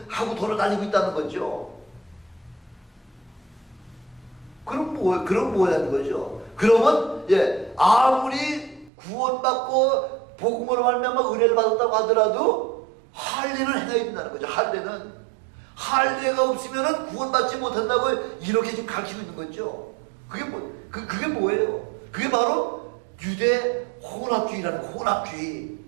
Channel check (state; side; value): drops out; left; at 8.9 s